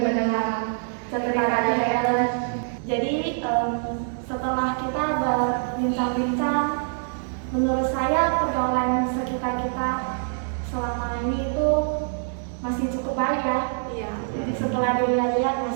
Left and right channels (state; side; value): silent; left; 56 dB below the other